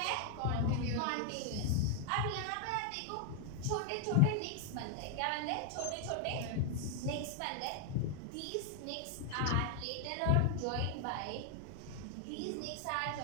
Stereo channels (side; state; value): both; different; correlation 0.00